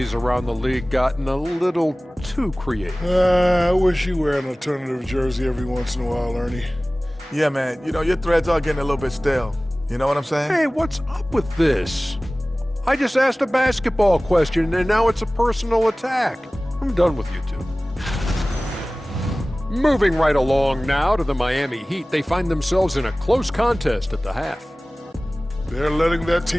around the league gotten a little too creative? I wish you wear an alternative jersey every once in a while, Ernie. Yeah, man. You know, your threads are getting a little bit stale. You know what I'm saying? Hey, what's up with this? I just asked a basketball question, and now it's a personal attack. I'm done with you two. Moving right along now to the Miami Heat. They find themselves in a close contest at the half. They're letting that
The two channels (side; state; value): both; normal; correlation 0.98